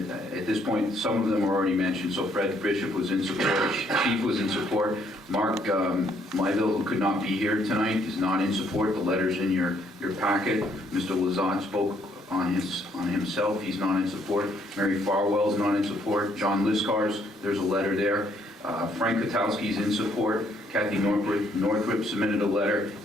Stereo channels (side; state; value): both; normal; correlation 0.68